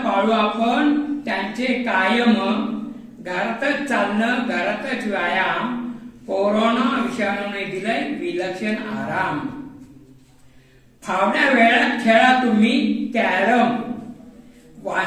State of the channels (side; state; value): both; identical; correlation 1.00